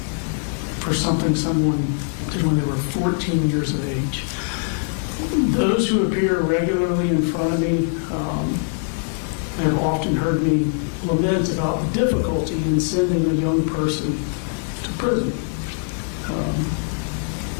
for something someone did when they were 14 years of age. Those who appear regularly in front of me have often heard me lament about the difficulty in sending a young person to prison.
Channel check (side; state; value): right; silent; digital silence